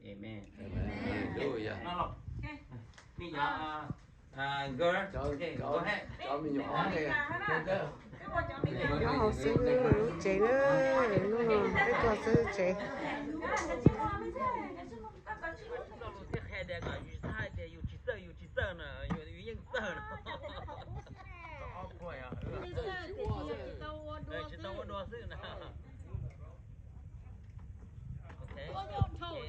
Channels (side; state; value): both; identical; correlation 1.00